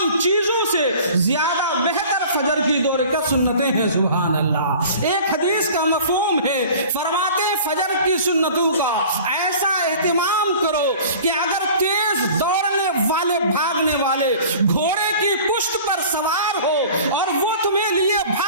چیزوں سے زیادہ بہتر فجر کی 2 رکعت سنتیں ہیں۔ سبحان اللہ۔ ایک حدیث کا مفہوم ہے، فرماتے فجر کی سنتوں کا ایسا اہتمام کرو کہ اگر تیز دوڑنے والے بھاگنے والے گھوڑے کی پشت پر سوار ہو اور وہ تمہیں لیے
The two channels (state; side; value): inverted; both; correlation -0.44